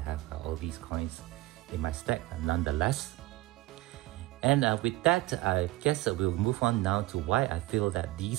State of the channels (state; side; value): quieter; left; 18.3 dB